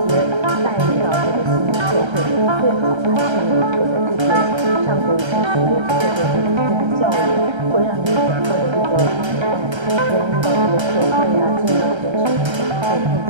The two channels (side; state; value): left; late; 1.3 ms